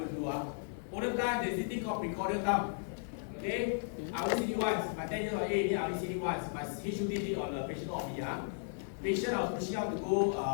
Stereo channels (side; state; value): right; silent; digital silence